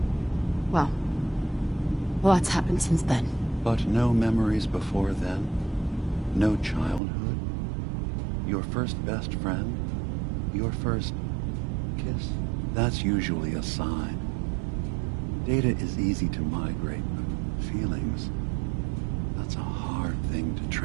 well, a lot's happened since then. But no memories before then? No childhood? Your first best friend? Your first kiss? That's usually a sign. Data is easy to migrate, but feelings, that's a hard thing to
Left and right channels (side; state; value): left; drops out; at 7.0 s